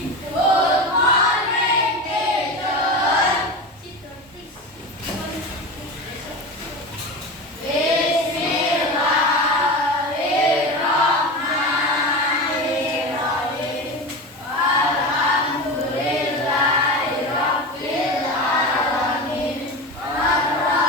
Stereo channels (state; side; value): normal; both; correlation 0.25